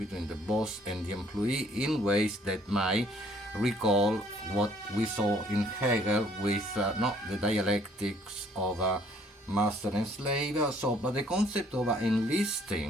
the boss and the employee, in ways that might recall what we saw in Hegel with not the dialectics of master and slave. But the concept of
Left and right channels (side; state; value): both; normal; correlation 0.61